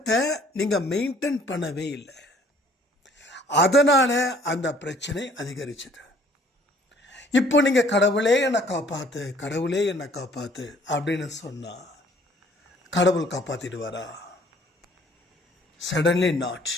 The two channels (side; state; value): both; normal; correlation 0.57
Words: நீங்கள் மெயின்டைன் பண்ணவே இல்லை. அதனால அந்த பிரச்சனை அதிகரிச்சது. இப்போ நீங்கள் கடவுளே என்னை காப்பாற்று, கடவுளே என்னை காப்பாற்று அப்படின்னு சொன்னால் கடவுள் காப்பாற்றிடுவாரா? Suddenly not.